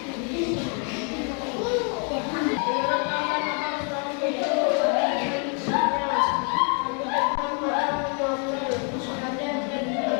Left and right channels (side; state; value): right; quieter; 39.4 dB